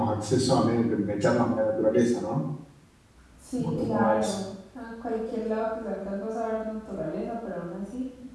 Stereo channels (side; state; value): both; identical; correlation 1.00